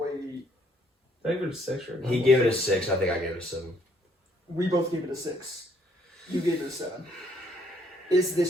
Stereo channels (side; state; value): both; normal; correlation 0.67